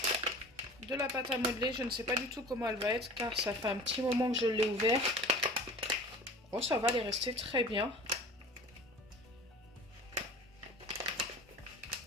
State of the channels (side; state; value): both; normal; correlation 0.40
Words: de la pâte à modeler. Je ne sais pas du tout comment elle va être car ça fait un petit moment que je l'ai ouvert. Oh, ça va, elle est restée très bien.